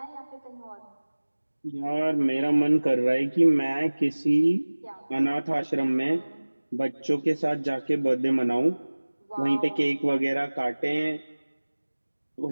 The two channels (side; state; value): both; inverted; correlation -1.00